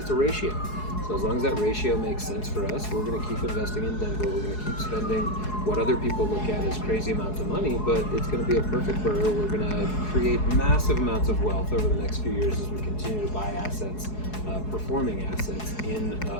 a ratio. So as long as that ratio makes sense for us, we're going to keep investing in Denver. We're going to keep spending what other people look at as crazy amounts of money, but it's going to be a perfect burr. We're going to create massive amounts of wealth over the next few years as we continue to buy assets, performing assets in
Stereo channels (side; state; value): right; late; 4.7 ms